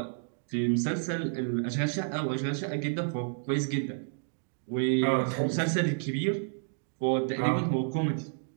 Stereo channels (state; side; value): silent; left; digital silence